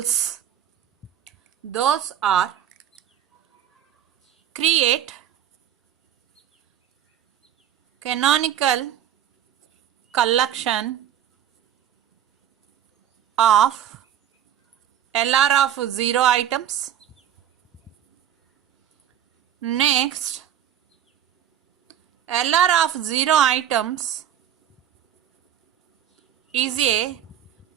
Those are: create canonical collection of LR of 0 items. Next, LR of 0 items is a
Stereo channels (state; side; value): quieter; left; 10.4 dB